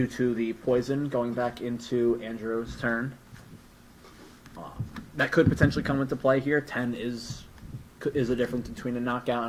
to the poison going back into Andrew's turn. That could potentially come into play here. 10 is a difference between a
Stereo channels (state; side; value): identical; both; correlation 1.00